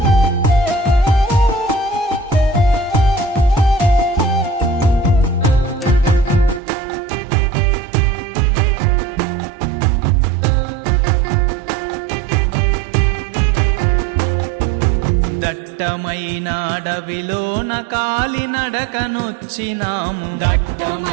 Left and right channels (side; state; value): left; drops out; at 6.6 s